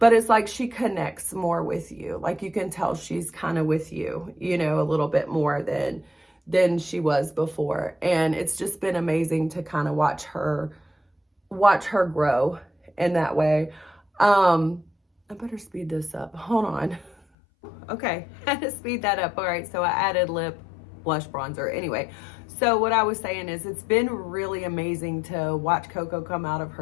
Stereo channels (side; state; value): right; drops out; at 17.2 s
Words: it's like she connects more with you. Like, you can tell she's kind of with you, you know, a little bit more than she was before. And it's just been amazing to kind of watch her grow in that way. I better speed this up. Hold on. Okay, I had to speed that up. All right, so I added lip blush bronzer. Anyway, so what I was saying is, it's been really amazing to watch Coco come out of